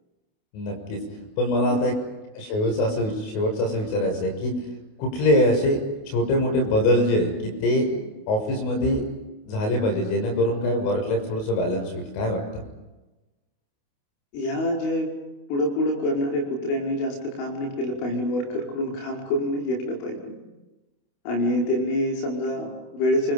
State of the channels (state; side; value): late; right; 28 ms